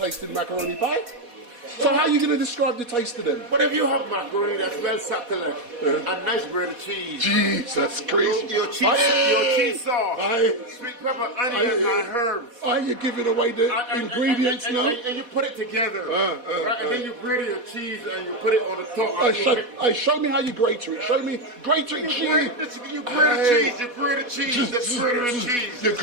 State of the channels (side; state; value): left; late; 4.1 ms